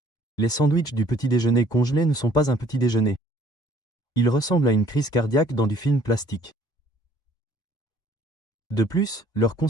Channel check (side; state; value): right; late; 2.2 ms